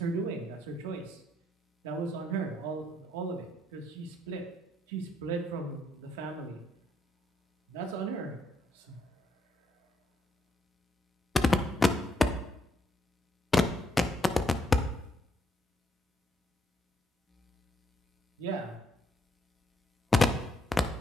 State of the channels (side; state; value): both; normal; correlation 0.74